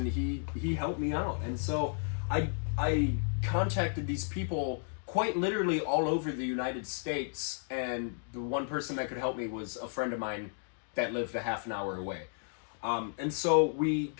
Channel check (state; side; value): silent; right; digital silence